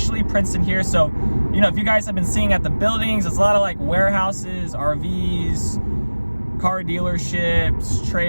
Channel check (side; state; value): both; inverted; correlation -1.00